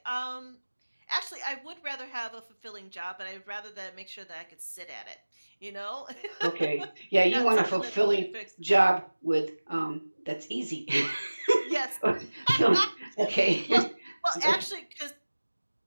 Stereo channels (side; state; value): both; inverted; correlation -1.00